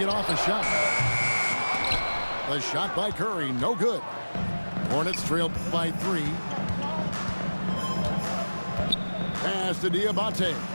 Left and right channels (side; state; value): both; inverted; correlation -1.00